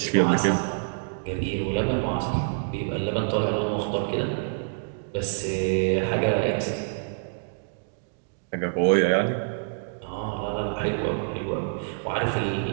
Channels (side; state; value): left; silent; digital silence